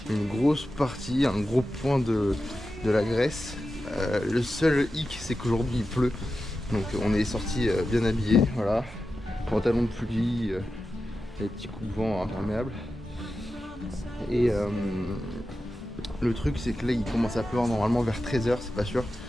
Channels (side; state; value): both; normal; correlation 0.92